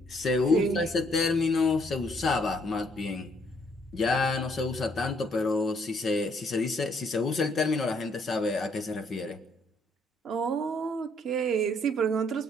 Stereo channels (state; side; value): normal; both; correlation 0.68